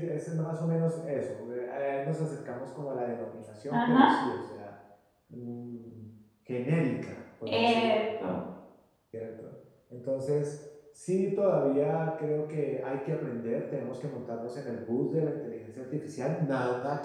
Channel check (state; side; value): identical; both; correlation 1.00